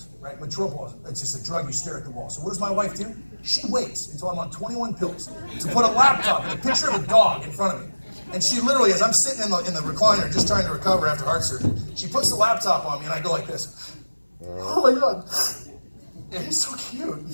right? Metropol. It's just a drug. You stare at the wall. So what does my wife do? She waits until I'm on 21 pills to put a laptop and a picture of a dog in front of me. And she literally, as I'm sitting in the recliner just trying to recover after heart surgery, she puts the laptop on me and I go like this. Oh my God. It's so cute.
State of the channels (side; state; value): both; inverted; correlation -1.00